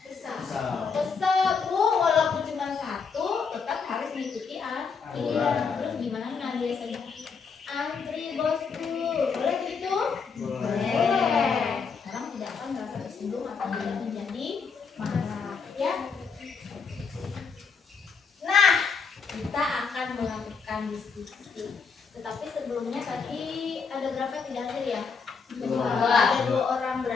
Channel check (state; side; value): quieter; right; 5.5 dB